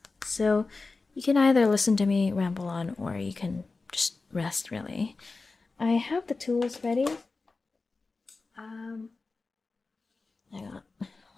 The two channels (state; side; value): quieter; right; 3.8 dB